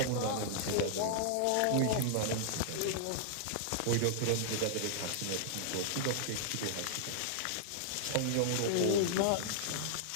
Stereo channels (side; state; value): both; different; correlation -0.01